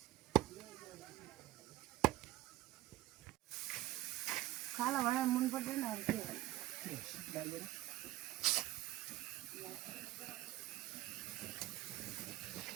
खाला भनेर मन पर्दैन अरू के डालेर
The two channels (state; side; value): quieter; left; 15.5 dB